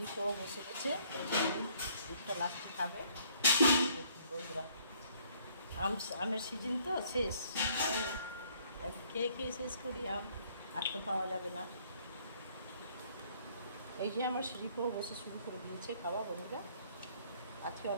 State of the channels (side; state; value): both; inverted; correlation -0.62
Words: বসে গেছে। দুধটা লাস্টে খাবে বন্ধুরা। আমের সিজন তো শেষ, খেয়ে শেষ করি আম, আর তো পাওয়া যাবে না। এই যে আমার সিঁড়িকেও বসে শুরু করে দিয়েছে খাওয়া বন্ধুরা। আজকে